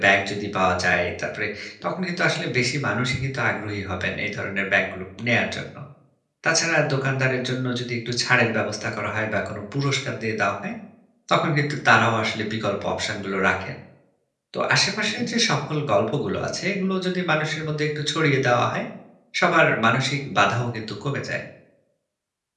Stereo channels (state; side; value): identical; both; correlation 1.00